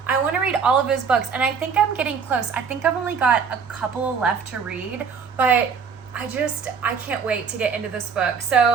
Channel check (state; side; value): quieter; left; 6.0 dB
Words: want to read all of his books. And I think I'm getting close. I think I've only got a couple left to read, but I can't wait to get into this book.